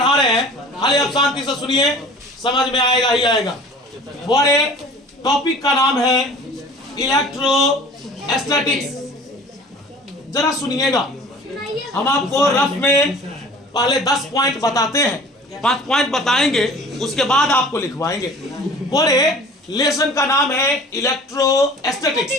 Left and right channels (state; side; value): normal; both; correlation 0.45